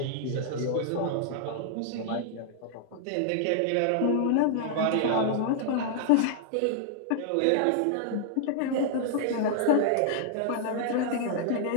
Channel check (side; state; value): both; different; correlation -0.01